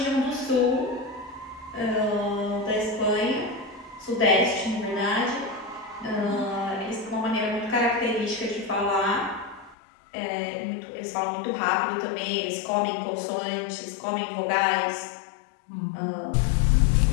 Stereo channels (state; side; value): drops out; right; at 9.8 s